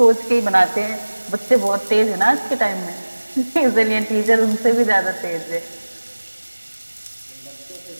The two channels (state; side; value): inverted; both; correlation -1.00